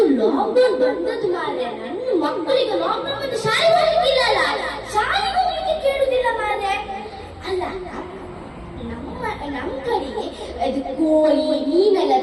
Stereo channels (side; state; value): both; identical; correlation 1.00